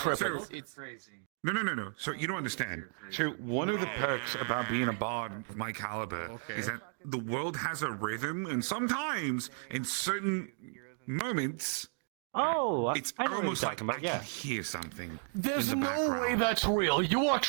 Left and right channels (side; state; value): left; silent; 55 dB below the other